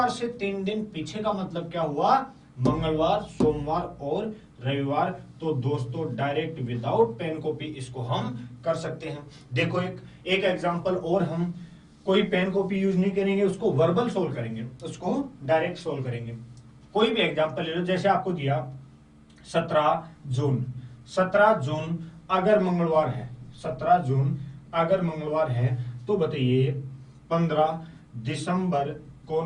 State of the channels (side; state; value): both; identical; correlation 1.00